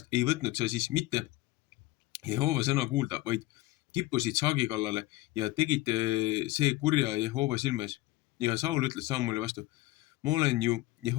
ei võtnud sa siis mitte Jehova sõna kuulda, vaid kippusid saagi kallale ja tegid see kurja Jehova silme ees. Ja Saul ütles Samueli vastu, ma olen ju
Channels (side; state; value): right; quieter; 18.9 dB